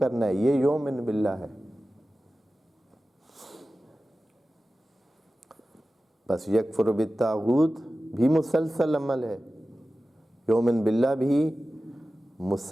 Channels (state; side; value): normal; both; correlation 0.95